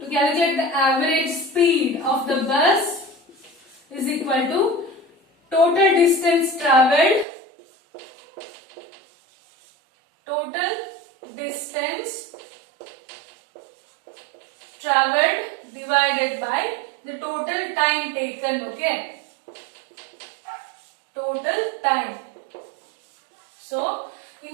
calculate the average speed of the bus is equal to total distance traveled, divided by the total time taken, okay? Total time. So,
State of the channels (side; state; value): left; drops out; at 7.2 s